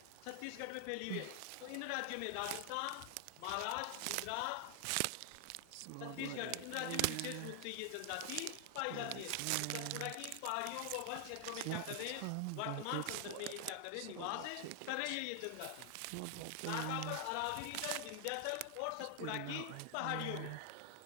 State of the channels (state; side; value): different; both; correlation 0.00